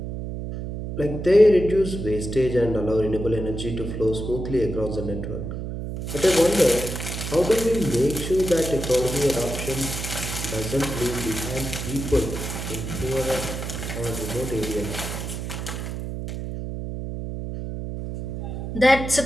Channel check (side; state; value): right; noise; hum, 6 dB below the sound